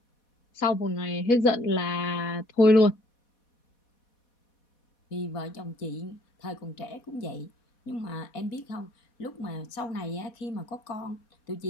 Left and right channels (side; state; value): right; late; 4.1 ms